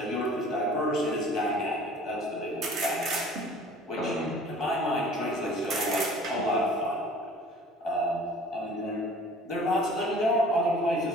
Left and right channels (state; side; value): normal; both; correlation 0.48